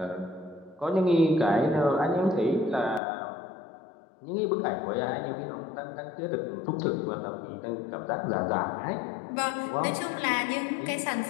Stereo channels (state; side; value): drops out; right; at 3.0 s